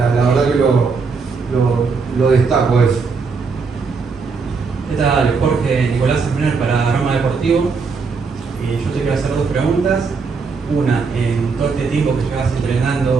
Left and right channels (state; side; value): quieter; left; 4.9 dB